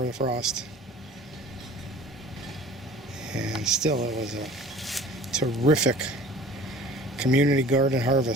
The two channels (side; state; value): both; normal; correlation 0.46